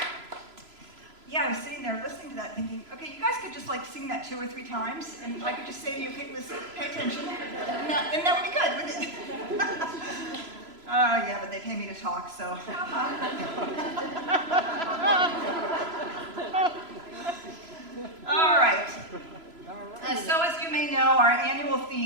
Yeah, I was sitting there listening to that thinking, okay, you guys could just like sing that 2 or 3 times, and I could just say to you, okay, listen, pay attention, and that would be good, wouldn't it? Yeah, but they pay me to talk, so. All right. So as you may know, our annual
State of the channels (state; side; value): late; left; 3.0 ms